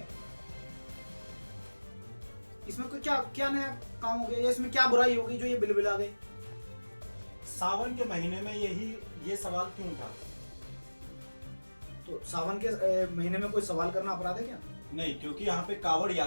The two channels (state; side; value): inverted; both; correlation -1.00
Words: इसमें कोई क्या क्या नया काम हो गया, या इसमें क्या बुराई होगी जो ये बिलबिला गई? सावन के महीने में ये सवाल क्यों था? तो सावन के महीने में कोई सवाल करना अपराध है क्या? नहीं, क्योंकि यहाँ पे कावड़